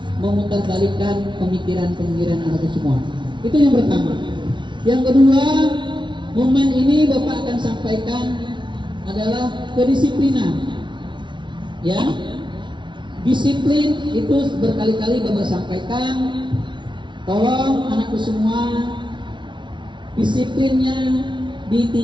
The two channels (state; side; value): late; left; 0.24 ms